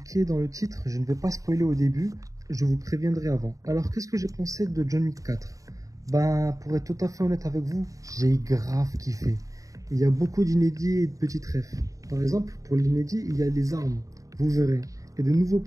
dans le titre, je ne vais pas spoiler au début, je vous préviendrai avant. Alors qu'est-ce que j'ai pensé de John Wick 4? Pour être tout à fait honnête avec vous, j'ai grave kiffé. Il y a beaucoup d'inédits et de petites refs. Par exemple, pour l'inédit, il y a des armes, vous verrez, et de nouveaux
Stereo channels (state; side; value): late; left; 0.16 ms